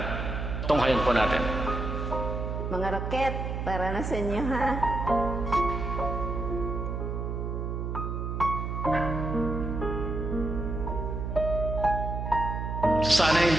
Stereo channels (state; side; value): noise; right; hum, 3 dB below the sound